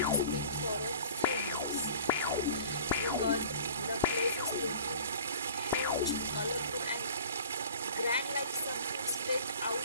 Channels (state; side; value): inverted; both; correlation -0.45